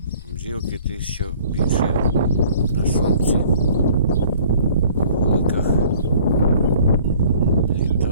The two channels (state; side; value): inverted; both; correlation -0.53